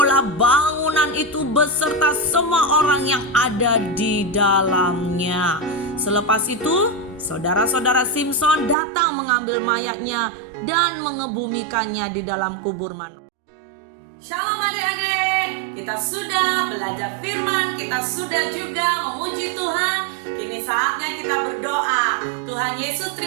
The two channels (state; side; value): drops out; left; at 8.8 s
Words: bangunan itu beserta semua orang yang ada di dalamnya. Selepas itu saudara-saudara Simson datang mengambil mayatnya dan mengebumikannya di dalam kubur Manoah. Shalom adik-adik, kita sudah belajar firman, kita sudah juga memuji Tuhan. Kini saatnya kita berdoa. Tuhan Yesus,